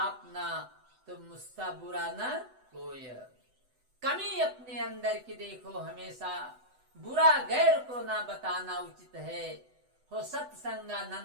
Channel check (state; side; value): late; left; 8.0 ms